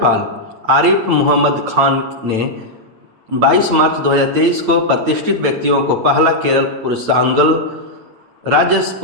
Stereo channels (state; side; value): late; left; 9.1 ms